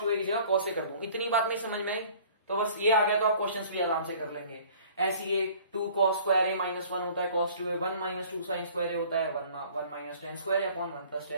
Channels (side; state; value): both; inverted; correlation -0.51